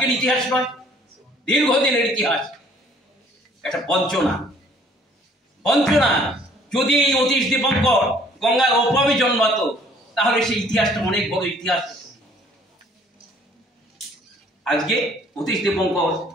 ইতিহাস নয়, দীর্ঘদিনের ইতিহাস। একটা বঞ্চনা। যদি এই অতীশ দীপঙ্কর গঙ্গার ওপারে জন্মাতো তাহলে সেই ইতিহাসটা অনেক বড় ইতিহাস। আজকে অতীশ দীপঙ্কর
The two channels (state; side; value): normal; both; correlation 0.58